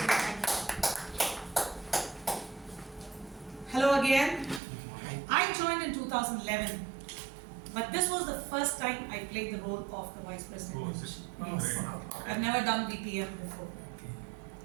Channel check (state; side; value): drops out; left; at 4.6 s